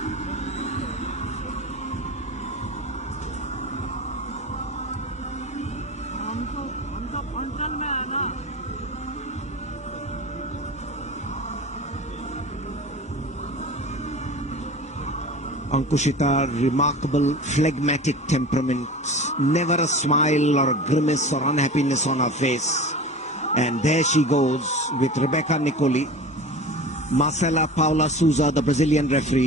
Ankushita, remarkable phlegmatic temperament, never a smile or a grimace or unhappiness on her face. And there she goes with Rebecca Nicoli. Marcela Paula Souza, the Brazilian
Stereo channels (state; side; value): normal; both; correlation 0.34